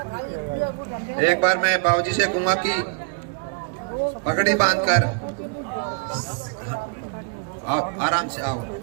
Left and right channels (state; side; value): quieter; left; 33.0 dB